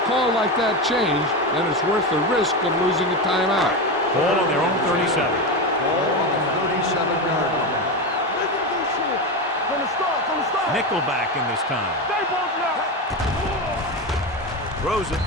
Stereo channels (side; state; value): both; normal; correlation 0.17